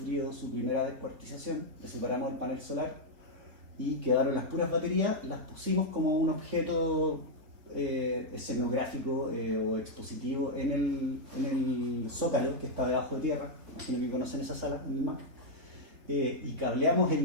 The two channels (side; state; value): left; late; 3.9 ms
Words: su primera descuartización, le separamos el panel solar y quedaron las puras baterías, las pusimos como un objeto escenográfico o expositivo en el Zócalo, que está debajo de tierra. Imagino que conocen esa sala en el MAC. Y cableamos